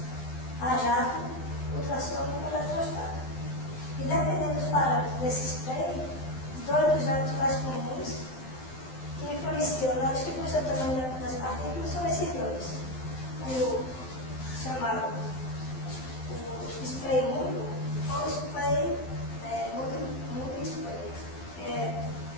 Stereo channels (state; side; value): late; right; 12 ms